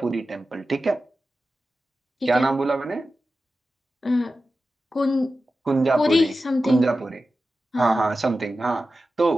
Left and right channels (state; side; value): normal; both; correlation 0.93